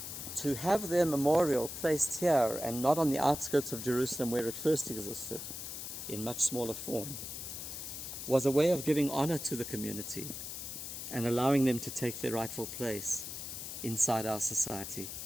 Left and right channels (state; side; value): noise; left; hiss, 7 dB below the sound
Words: To have their memorial placed here and not on the outskirts of Jerusalem where it first existed, in much smaller form, was a way of giving honor to the community and allowing them to take their rightful place inside our society.